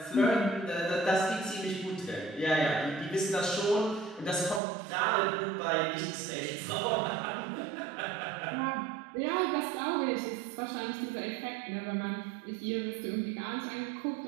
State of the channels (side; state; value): left; drops out; at 4.6 s